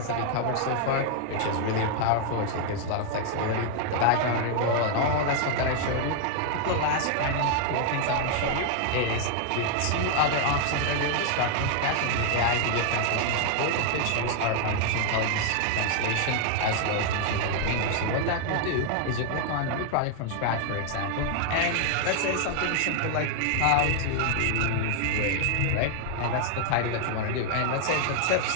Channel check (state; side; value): different; both; correlation 0.00